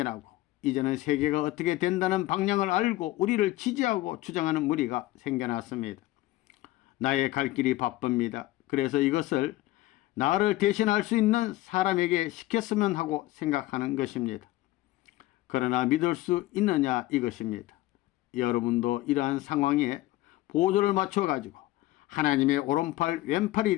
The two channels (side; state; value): right; quieter; 17.1 dB